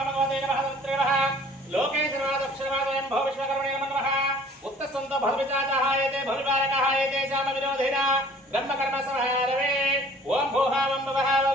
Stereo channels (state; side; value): normal; both; correlation 0.52